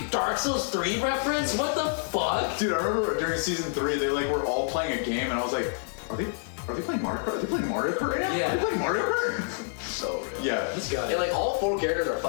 Dark Souls 3 reference? What the fuck? Dude, I remember during season 3, they like were all playing a game, and I was like, are they playing Mario Kart? Are they playing Mario Kart right now? Yeah. Are they playing Mario Kart? So good. Yeah. Let's go. And like all 4 characters are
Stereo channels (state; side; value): silent; right; digital silence